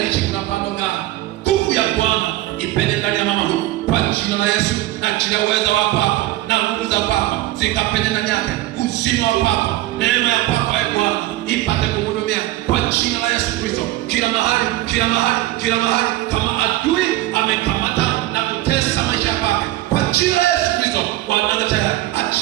kuna pando gani, nguvu ya Bwana ipende ndani ya mama huyu kwa jina la Yesu. Na kila uweza wa kwako na nguvu za kwako zikapende ndani yake, uzima wa kwako, neema ya kwako Bwana ipate kumhudumia kwa jina la Yesu Kristo. Kila mahali, kila mahali, kila mahali kama adui amekamata na kutesa maisha yake, kwa jina la Yesu Kristo wanataka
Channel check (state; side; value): quieter; left; 16.2 dB